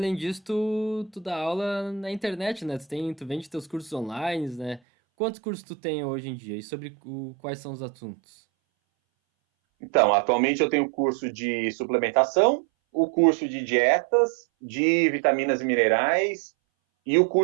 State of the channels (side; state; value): left; drops out; at 4.8 s